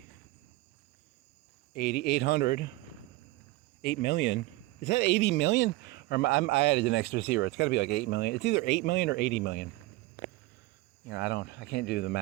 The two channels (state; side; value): quieter; left; 19.5 dB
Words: 800. 8 million. Is that 80 million? Or I added an extra zero. It's got to be like 8 million. It's either 8 million or 80 million. I can't do the